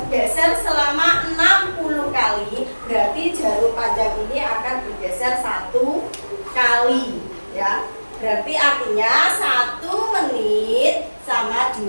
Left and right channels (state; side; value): inverted; both; correlation -1.00